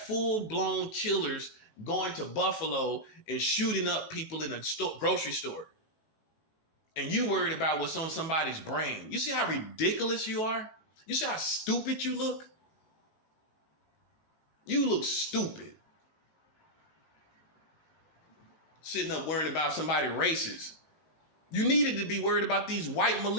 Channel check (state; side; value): late; right; 19 ms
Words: killers going to Buffalo and shooting up people in a grocery store. And you worried about what's on somebody's brain. You see how ridiculous you are? You see how stupid you look? You look stupid. Sitting up worrying about somebody racist. You needed to be worried about these white